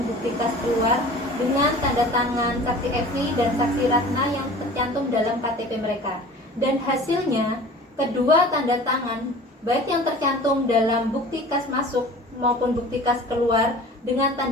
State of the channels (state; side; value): normal; both; correlation 0.42